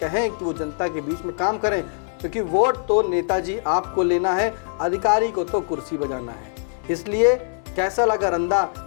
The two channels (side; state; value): right; silent; digital silence